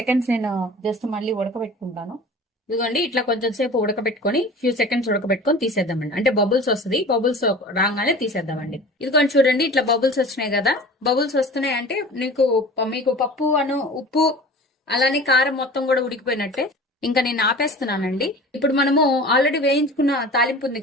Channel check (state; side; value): normal; both; correlation 0.39